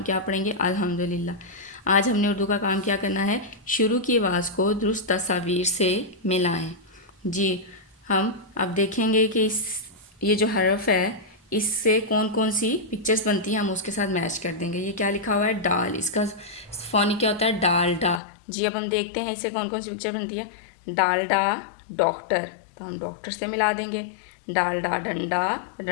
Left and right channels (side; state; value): right; drops out; at 18.2 s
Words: क्या पढ़ेंगे? अल्हम्दुलिल्लाह। आज हमने उर्दू का काम क्या करना है? शुरू की आवाज़ को दुरुस्त तस्वीर से मिलाएं। जी, हम अब देखेंगे कि ये जो हरफ है इससे कौन कौन सी पिक्चर्स बनती हैं, हम उसके साथ मैच कर देंगे। ये क्या लिखा हुआ है? डाल। इसका फ़ोनी क्या होता है? डालडा। जी, अब हम देखते हैं इससे कौन कौन सी पिक्चर बनती है। डालडा डॉक्टर, तो हम डॉक्टर से मिला देंगे। डालडा डंडा,